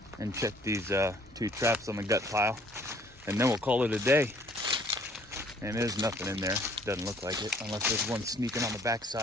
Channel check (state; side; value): normal; both; correlation 0.59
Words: and check these 2 traps on the gut pile, and then we'll call it a day. And there's nothing in there. Doesn't look like it, unless there's one sneaking on the